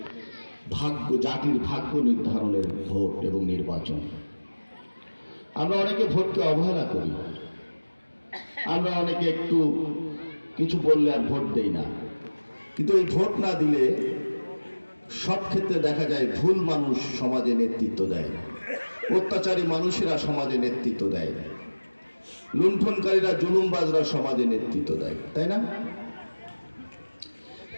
ভাগ্য, জাতির ভাগ্য নির্ধারণের ভোট এবং নির্বাচন। আমরা অনেকে ভোটকে অবহেলা করি, আমরা অনেকে একটু কিছু বললে আর ভোট দেই না। কিন্তু এই ভোট না দিলে সব ক্ষেত্রে দেখা যায় ভুল মানুষ সমাজে নেতৃত্ব দেয়, অত্যাচারী মানুষেরা সমাজে নেতৃত্ব দেয়, লুণ্ঠনকারীরা, জুলুমবাজরা সমাজে নেতৃত্ব দেয়, তাই না?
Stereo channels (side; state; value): both; inverted; correlation -1.00